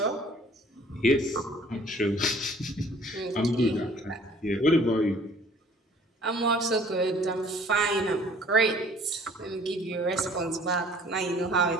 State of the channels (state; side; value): normal; both; correlation 0.54